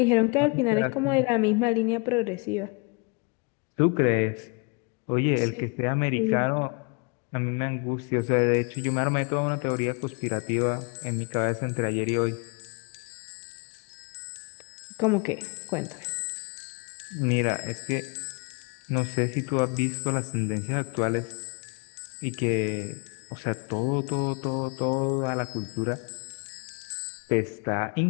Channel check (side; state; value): right; quieter; 32.6 dB